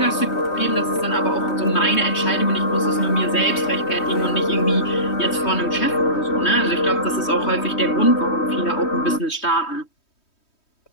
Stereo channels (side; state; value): right; late; 3.2 ms